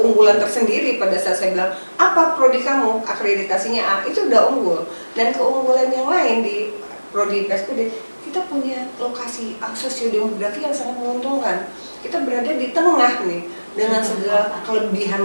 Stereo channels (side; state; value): both; inverted; correlation -1.00